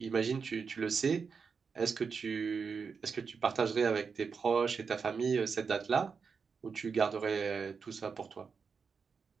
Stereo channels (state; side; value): quieter; left; 5.6 dB